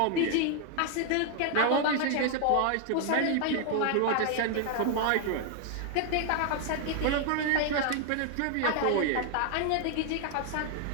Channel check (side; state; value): both; different; correlation 0.00